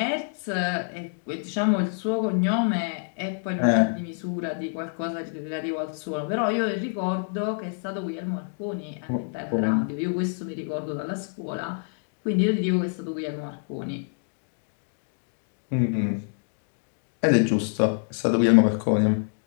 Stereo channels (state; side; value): silent; right; digital silence